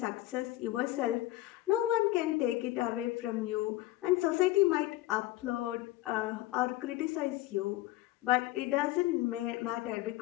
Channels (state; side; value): quieter; right; 16.8 dB